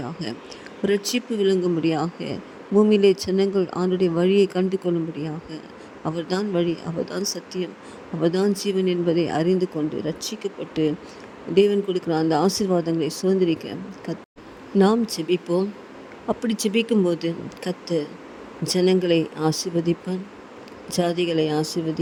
ரட்சிப்பு விளங்கும்படியாக, பூமியிலே ஜனங்கள் ஆண்டுடைய வழியை கண்டு கொள்ளும்படியாக, அவர்தான் வழி, அவர்தான் சத்தியம், அவர்தான் ஜீவன் என்பதை அறிந்து கொண்டு ரட்சிக்கப்பட்டு தேவன் கொடுக்குற அந்த ஆசீர்வாதங்களை சுதந்திரிக்க நாம் ஜெபிப்போம். அப்படி ஜெபிக்கும்போது கர்த்தர் ஜனங்களை ஆசீர்வதிப்பான், ஜாதிகளை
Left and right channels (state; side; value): identical; both; correlation 1.00